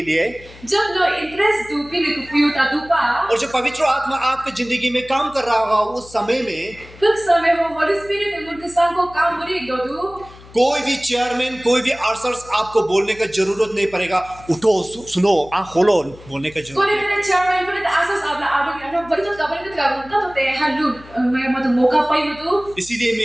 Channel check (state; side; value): noise; left; hum, 21 dB below the sound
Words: लिए जब नो इंटरेस्ट दो पिन को पुयो ता दुपा और जब पवित्र आत्मा आपकी जिंदगी में काम कर रहा होगा उस समय में कुछ समय हो होली स्पिरिट उनके संग को काम मुरी दो कोई भी चेयरमैन कोई भी आर्सर्स आपको बोलने का जरूरत नहीं पड़ेगा. उठो सुनो आँख खोलो बोलने का जरूरत कोने नहीं. ने चेयरमैन को तो आसस आपला आडो के बड़ी तो कबर का बनता तो ते हल्लू मैं मत मौका पाई मत इसीलिए